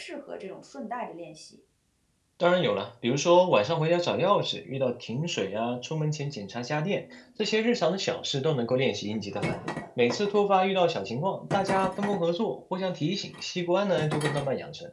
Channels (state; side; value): identical; both; correlation 1.00